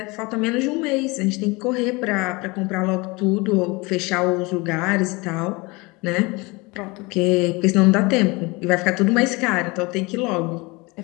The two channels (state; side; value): quieter; right; 25.3 dB